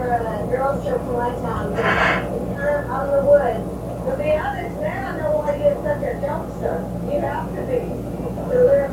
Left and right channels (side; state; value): both; identical; correlation 1.00